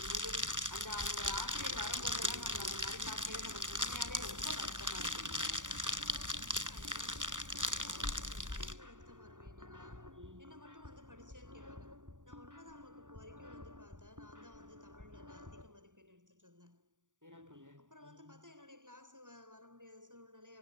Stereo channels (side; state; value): left; late; 0.87 ms